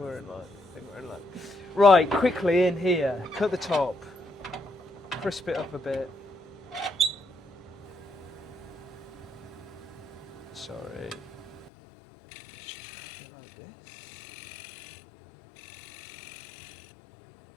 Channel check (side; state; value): right; drops out; at 11.7 s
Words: in luck. Right, quickly in here. Cut the top. Crisp it up a bit. Sorry.